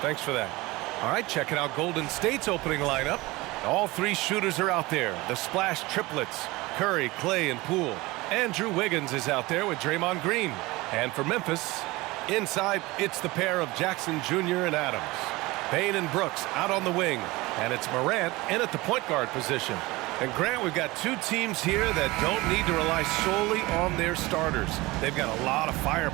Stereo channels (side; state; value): left; quieter; 21.3 dB